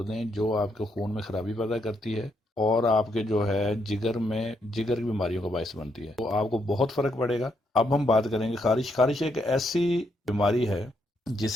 دیں جو آپ کے خون میں خرابی پیدا کرتی ہے اور آپ کے جو ہے جگر کی بیماریوں کا باعث بنتی ہے، تو آپ کو بہت فرق پڑے گا۔ اب ہم بات کریں گے خارش ایک ایسی بیماری ہے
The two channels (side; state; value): both; normal; correlation 0.77